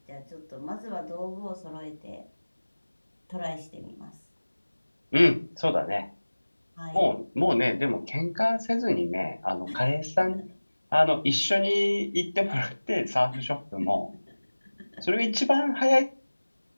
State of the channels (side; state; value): both; inverted; correlation -1.00